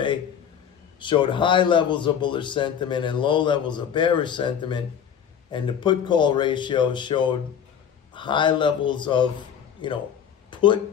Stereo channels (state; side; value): quieter; right; 8.3 dB